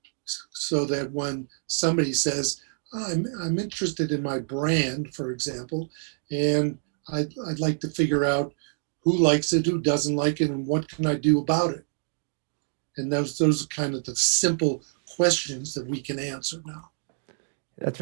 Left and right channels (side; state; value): left; silent; 60 dB below the other